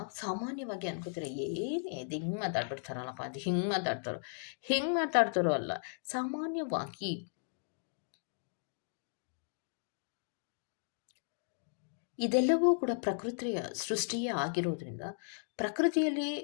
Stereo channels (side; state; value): right; silent; digital silence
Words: ಸಾಮಾನ್ಯವಾಗಿ ಅನ್ಕೋತಾರೆ, ಏನೇ ಅದು ಹಿಂಗೆ ಮಾತಾಡ್ಬಿಡ್ತಾರಲ್ಲಪ್ಪ, ಅದು ಹಿಂಗೆ ಮಾತಾಡ್ತಾರೋ ಅಲ್ಲ. ಸಾಮಾನ್ಯವಾಗಿ ಇದೆಲ್ಲವೂ ಕೂಡ ಪ್ರಕೃತಿಯ ಸೃಷ್ಟಿಯೇ ಆಗಿರೋದ್ರಿಂದ ಪ್ರಕೃತಿಯಲ್ಲಿ